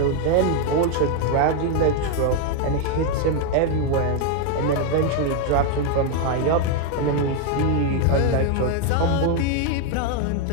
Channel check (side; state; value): both; different; correlation 0.01